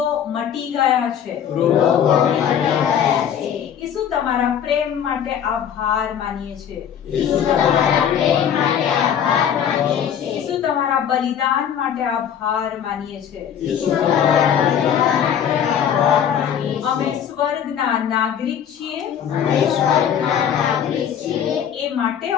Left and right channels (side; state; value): right; quieter; 8.8 dB